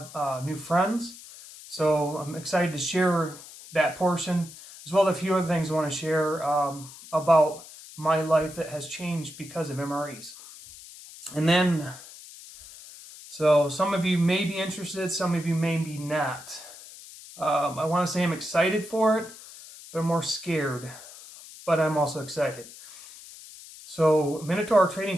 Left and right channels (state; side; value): noise; left; hiss, 17 dB below the sound